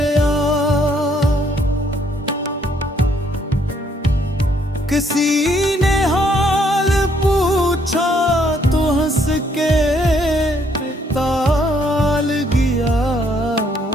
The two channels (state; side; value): normal; both; correlation 0.68